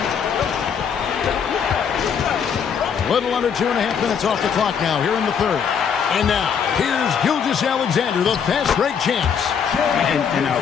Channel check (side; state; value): right; quieter; 7.2 dB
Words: Little under 2.5 minutes off the clock now here in the third. And now, here's Gilgeous-Alexander, the fast break champs. An